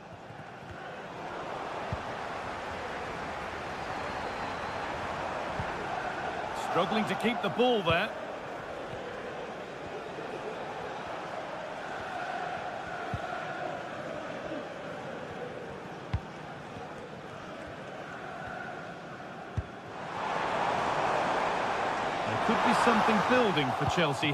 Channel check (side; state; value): both; identical; correlation 1.00